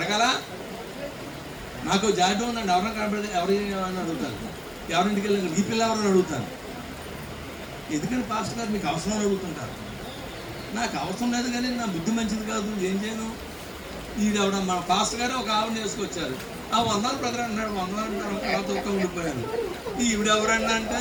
నాకు జాబ్ ఉందండి, ఎవరైనా కనబడితే ఎవరైనా అడుగుతాను, ఎవరింటికి వెళ్ళి ఈ పిల్ల ఎవరైనా అడుగుతాను. ఎందుకని పాస్టర్ గారు మీకు అవసరం అడుగుతుంటారు. నాకు అవసరం లేదు కానీ నా బుద్ధి మంచిది కాదు, ఏం చేయను. ఈవిడ మన పాస్టర్ గారు ఒక ఆవిడ చేసుకొచ్చారు. ఆ 100 బ్రదర్ అన్నాడు, 100 అంటారు, తర్వాత ఒక్క ఉండిపోయాను. ఈవిడ ఎవరన్నా అంటే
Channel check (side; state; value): both; identical; correlation 1.00